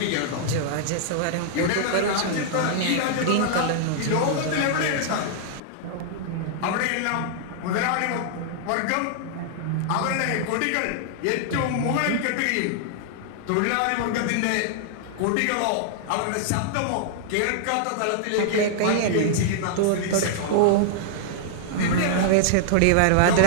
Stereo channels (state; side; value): different; both; correlation -0.01